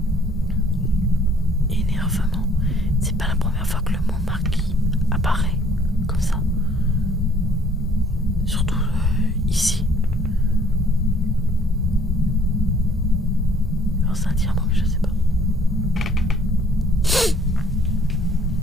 Énervement, c'est pas la première fois que le mot marquis apparaît comme ça. Surtout ici. Alors c'est un dire mot, mais je sais pas.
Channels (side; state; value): both; normal; correlation 0.59